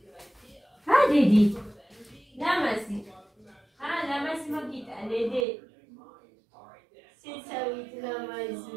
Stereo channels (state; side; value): drops out; left; at 5.5 s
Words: დედი. ლამაზი. ლამაზი მოგიტან დედი. სიცავით